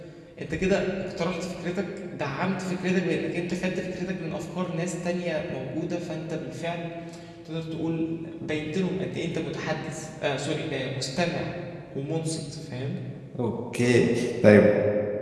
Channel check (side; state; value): both; identical; correlation 1.00